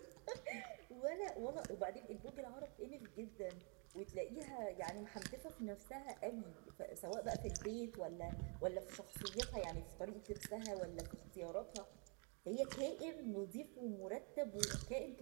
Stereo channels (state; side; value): quieter; left; 36.6 dB